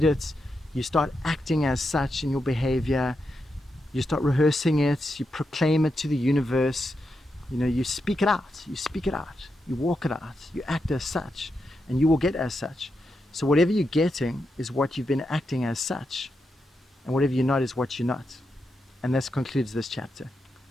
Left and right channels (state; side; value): normal; both; correlation 0.85